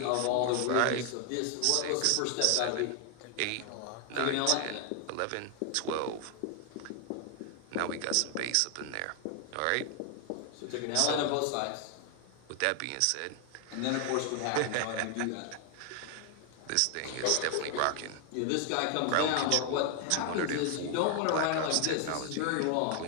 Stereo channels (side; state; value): both; different; correlation 0.00